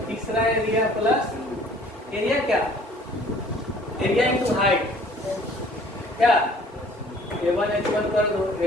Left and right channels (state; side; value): normal; both; correlation 0.53